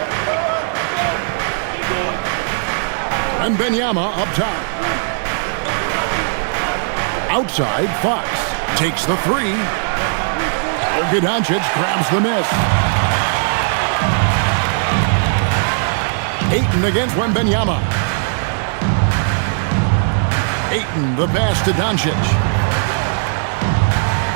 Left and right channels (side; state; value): left; silent; digital silence